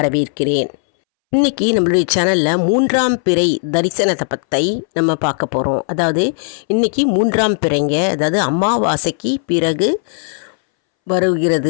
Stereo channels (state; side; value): silent; right; 65 dB below the other